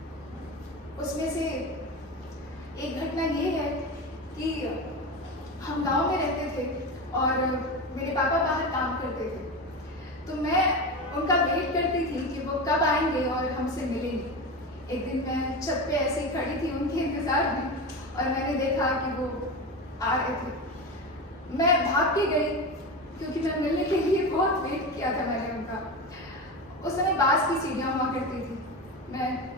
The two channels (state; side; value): normal; both; correlation 0.23